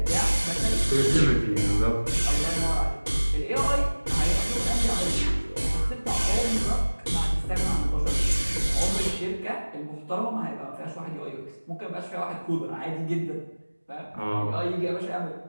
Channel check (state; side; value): inverted; both; correlation -1.00